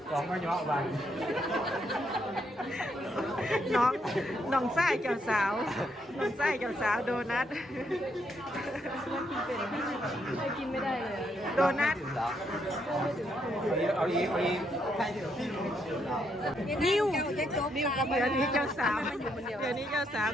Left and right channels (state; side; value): normal; both; correlation 0.76